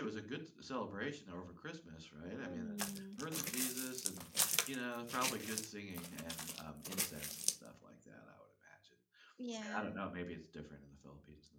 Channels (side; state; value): both; identical; correlation 1.00